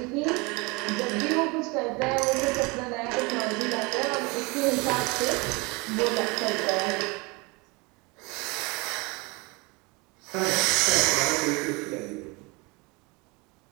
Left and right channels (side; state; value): left; quieter; 26.9 dB